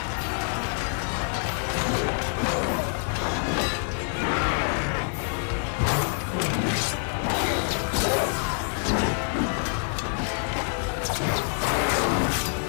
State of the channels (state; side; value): silent; right; 58 dB below the other